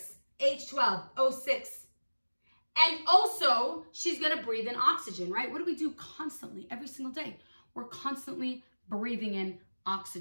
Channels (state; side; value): inverted; both; correlation -1.00